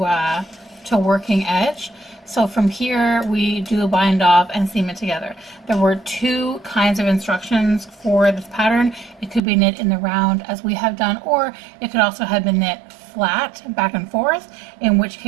working edge. So from here, we do a bind off and seam it together. There were 2 kinds of instructions for this pattern. It could be knit in the round as we have done, or it could also have been knit flat back and forth, in which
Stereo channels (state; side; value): drops out; left; at 9.4 s